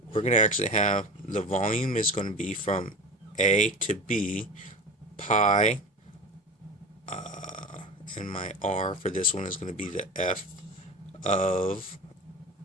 we're going to actually have the volume is going to be from A to B, pi, and my R for this one is going to be the F of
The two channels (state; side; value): normal; both; correlation 0.32